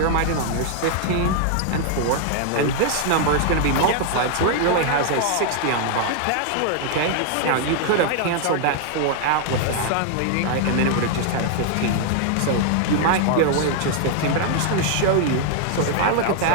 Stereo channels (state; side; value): different; both; correlation 0.00